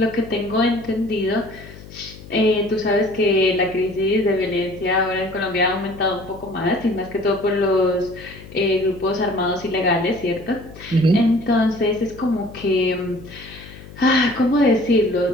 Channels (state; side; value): noise; left; hum, 17 dB below the sound